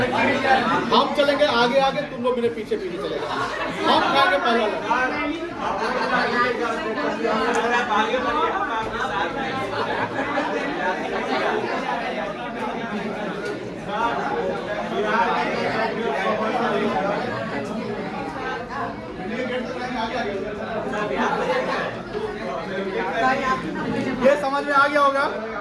हम चलेंगे आगे आगे, तुम लोग मेरे पीछे पीछे चलेगा। हम खाएंगे पहला। ये समझ में आ गया होगा।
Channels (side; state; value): both; identical; correlation 1.00